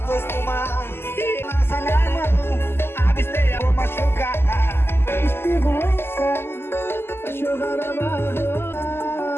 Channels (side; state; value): right; late; 0.12 ms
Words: dois tomar. E lança minha mão, absteia, vou machucar. Esperança, vai chorar na barra.